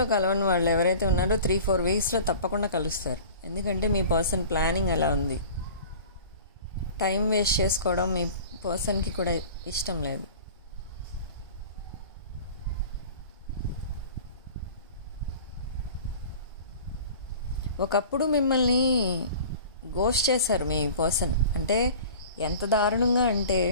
కలవని వాళ్ళు ఎవరైతే ఉన్నారో 3-4 వీక్స్లో తప్పకుండా కలుస్తారు. ఎందుకంటే మీ పర్సన్ ప్లానింగ్ ఎలా ఉంది. టైం వేస్ట్ చేసుకోవడం మీ పర్సన్కి కూడా ఇష్టం లేదు. ఒకప్పుడు మిమ్మల్ని గోస్ట్ చేశారు మీ పర్సన్. అంటే ఎంత దారుణంగా అంటే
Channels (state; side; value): inverted; both; correlation -0.41